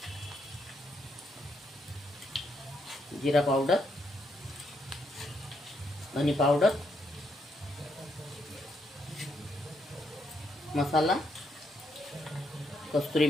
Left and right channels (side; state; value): both; normal; correlation 0.76